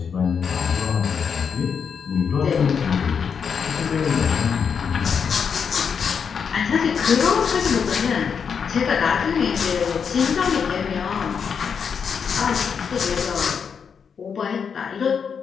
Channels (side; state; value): right; quieter; 6.6 dB